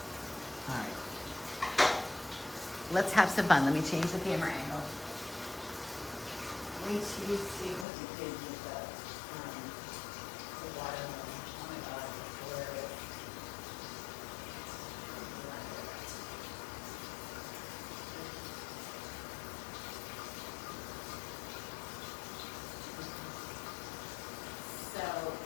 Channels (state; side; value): drops out; right; at 7.9 s